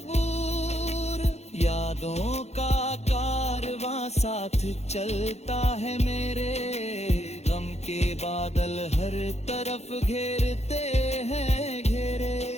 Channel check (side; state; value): right; late; 0.31 ms